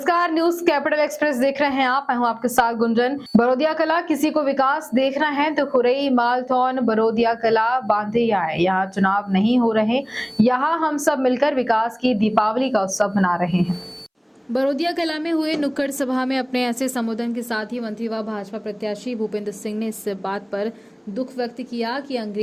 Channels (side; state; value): both; identical; correlation 1.00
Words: news capital express देख रहे हैं आप। मैं हूं आपके साथ गुंजन। बरोदिया कला किसी को विकास देखना है तो खुरई, मालथौन, बरोदिया कला, बांधे आए। यहाँ चुनाव नहीं हो रहे, यहाँ हम सब मिलकर विकास की दीपावली का उत्सव मना रहे हैं। बरोदिया कला में हुए नुक्कड़ सभा में अपने ऐसे संबोधन के साथ ही मंत्री व भाजपा प्रत्याशी भूपेंद्र सिंह ने इस बात पर दुख व्यक्त किया कि